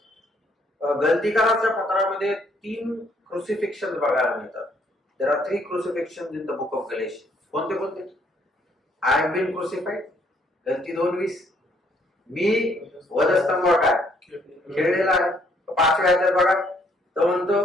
गलतीकाराच्या पत्रामध्ये 3 क्रुसिफिक्शन बघायला मिळतात. There are 3 crucifixion in the book of Galatian. कोणते कोणते? आय हॅव बीन क्रुसिफाईड, गलती 2:20. मी वधस्तंभावर काय खेळलेला आहे. 5व्या अध्यायात बघा, तो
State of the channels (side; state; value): both; normal; correlation 0.67